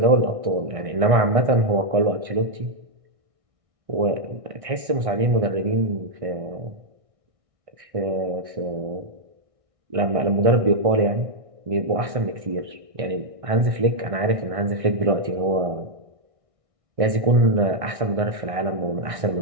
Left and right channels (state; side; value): late; left; 1.6 ms